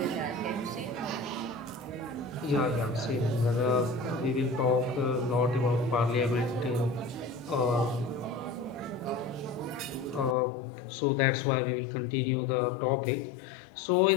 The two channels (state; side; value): drops out; right; at 10.4 s